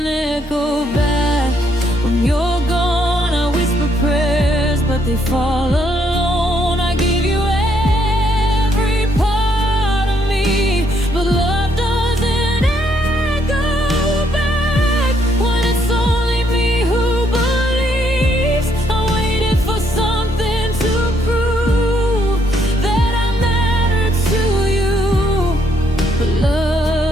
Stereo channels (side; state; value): both; normal; correlation 0.72